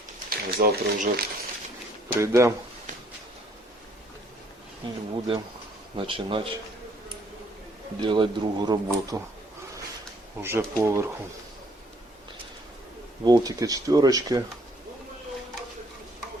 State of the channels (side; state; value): both; normal; correlation 0.64